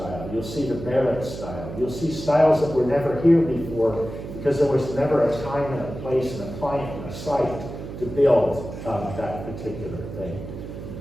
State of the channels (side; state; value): right; noise; hum, 10 dB below the sound